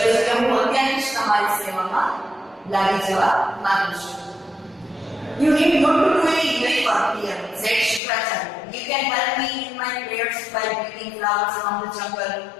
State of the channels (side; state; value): right; drops out; at 8.0 s